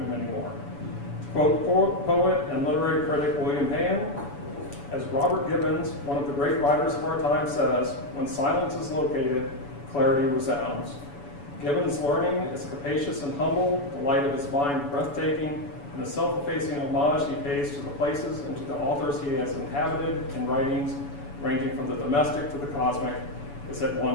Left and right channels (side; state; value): right; late; 7.0 ms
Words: many more. To quote poet and literary critic William Hand, as Robert Gibbons, one of the great writers of our time, says, when silence is located, clarity resounds. Gibbons' learning is capacious and humble, the light of his mind breathtaking, and the self-effacing homage he pays to the places and to the authors he has inhabited in writings ranging from the domestic to the cosmic is at